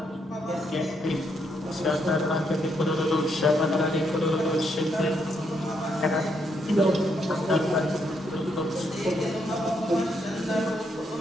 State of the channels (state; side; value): normal; both; correlation 0.76